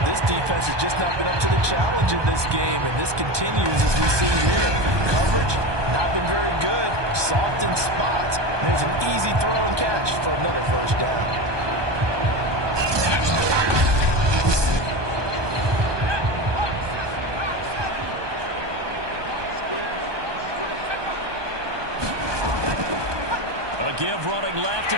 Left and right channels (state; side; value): late; left; 1.2 ms